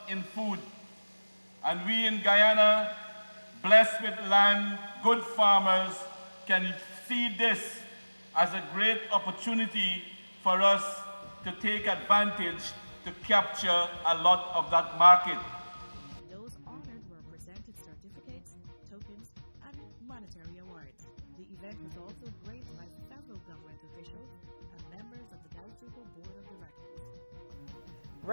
in food. And we in Guyana, blessed with land, good farmers, can see this as a great opportunity for us to take advantage to capture a lot of that market. Those honored were presented certificates, tokens, and monetary awards. The event was also graced by several government officials and members of the Gaisuco Board of Directors.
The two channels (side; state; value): both; inverted; correlation -1.00